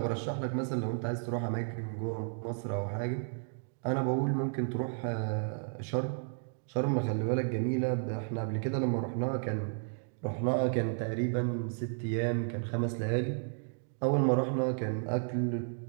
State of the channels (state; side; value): silent; left; digital silence